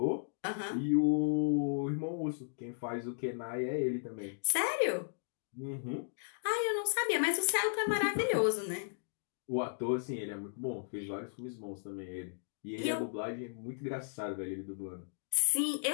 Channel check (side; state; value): right; silent; digital silence